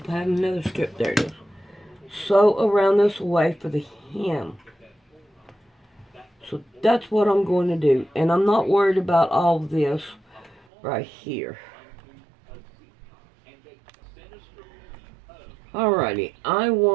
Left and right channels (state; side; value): drops out; left; at 10.7 s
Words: I have another strip. There it is. Sew around this way for the hem. So that's what I'm going to do. And I'm not worried about all this right here. Alrighty, I